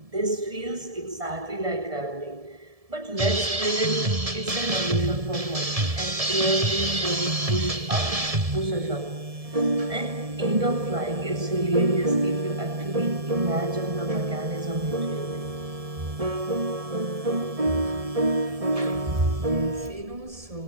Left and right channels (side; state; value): left; late; 1.7 ms